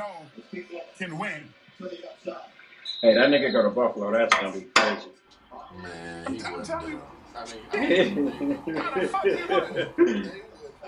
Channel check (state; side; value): identical; both; correlation 1.00